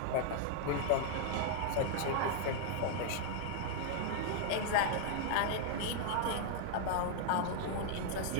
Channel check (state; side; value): different; both; correlation -0.01